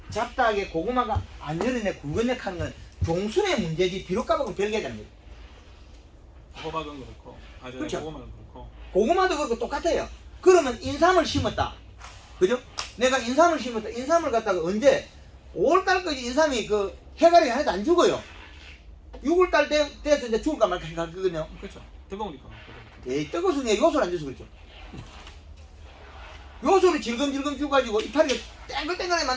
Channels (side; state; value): both; identical; correlation 1.00